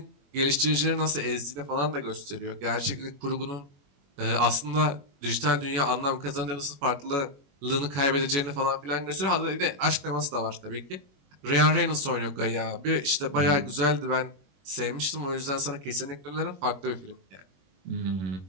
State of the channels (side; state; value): left; late; 21 ms